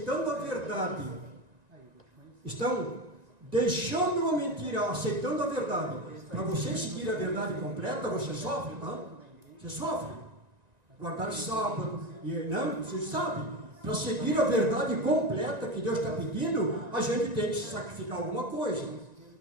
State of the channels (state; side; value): late; left; 1.9 ms